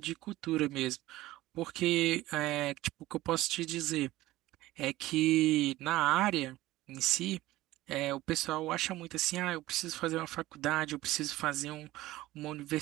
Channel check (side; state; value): left; quieter; 17.0 dB